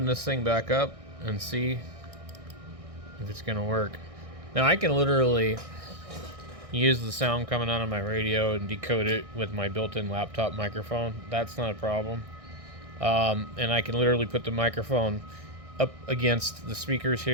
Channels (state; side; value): late; left; 1.6 ms